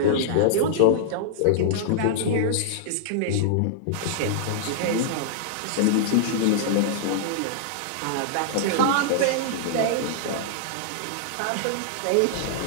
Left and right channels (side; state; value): both; different; correlation -0.02